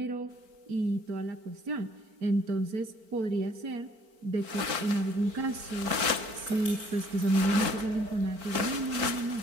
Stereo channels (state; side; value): late; left; 4.5 ms